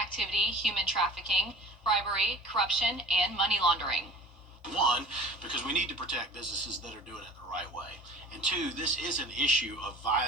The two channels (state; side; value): normal; both; correlation 0.42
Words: human trafficking, bribery, corruption, and money laundering. 1, because we need to protect businesses that are doing it the right way. And 2, this is an issue of